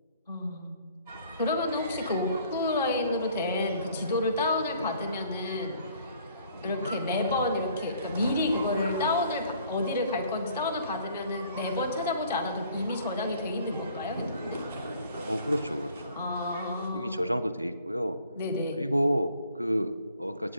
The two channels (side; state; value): both; inverted; correlation -0.57